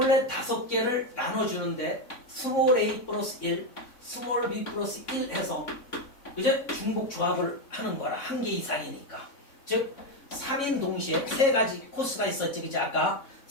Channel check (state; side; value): late; right; 3.6 ms